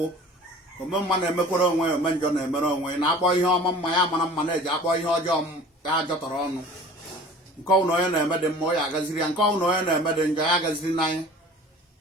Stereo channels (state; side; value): normal; both; correlation 0.44